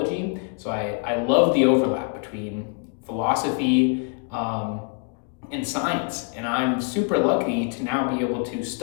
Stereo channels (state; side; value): quieter; right; 37.4 dB